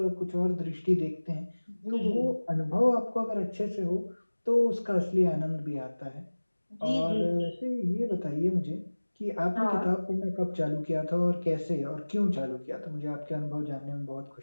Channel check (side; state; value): both; inverted; correlation -1.00